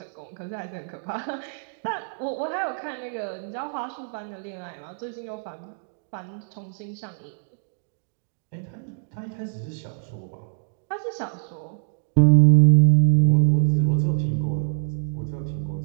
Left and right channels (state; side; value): silent; left; digital silence